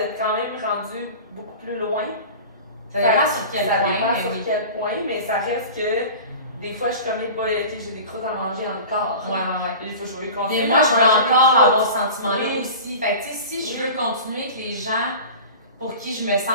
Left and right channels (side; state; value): both; inverted; correlation -0.36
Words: quand même rendu beaucoup plus loin. Ça dépend sur quel point. Mais ça reste que des fois, je suis comme, j'ai des croûtes à manger dans le corps. Il faut que je veux continuer. Mais moi, je veux encore avoir ce sentiment-là aussi. Fait que tu sais, si je veux continuer que les gens pour qui je me